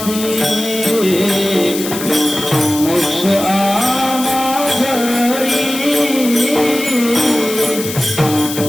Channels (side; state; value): left; noise; hiss, 8 dB below the sound